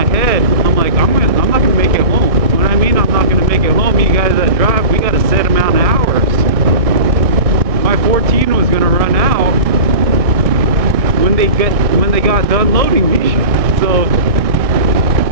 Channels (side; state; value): left; late; 1.6 ms